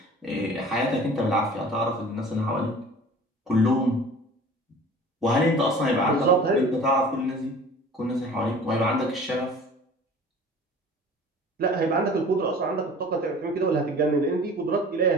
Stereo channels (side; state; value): both; normal; correlation 0.44